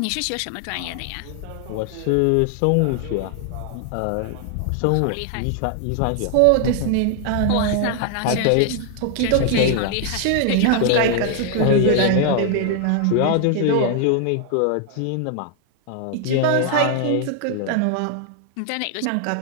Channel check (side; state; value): both; different; correlation 0.00